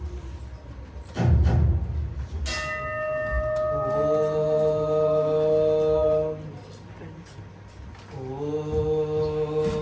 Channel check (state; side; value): identical; both; correlation 1.00